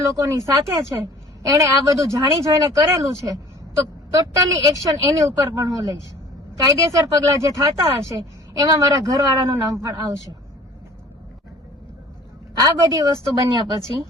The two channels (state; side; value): normal; both; correlation 0.49